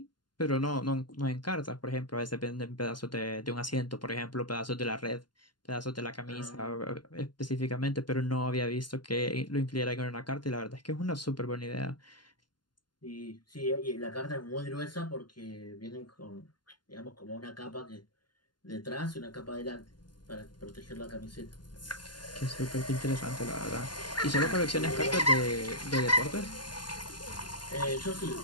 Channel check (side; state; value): right; late; 0.71 ms